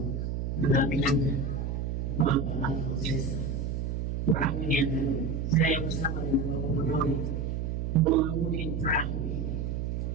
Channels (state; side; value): noise; right; hum, 2 dB below the sound